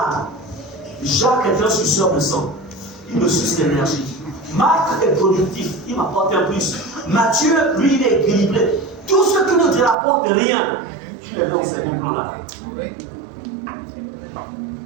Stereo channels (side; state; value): left; drops out; at 10.0 s